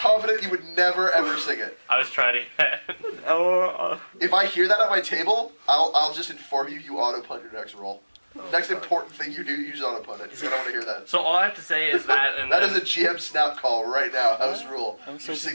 you would never, ever sing it. I was trying to get. If I hear that at my table, I'll just inform you auto-punt your next roll. Next important thing you do, use auto-punt it. I don't want to hear that. So all I have to say is that, and That then, is a GM snap call right now. House rule. I'm so You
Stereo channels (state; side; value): inverted; both; correlation -1.00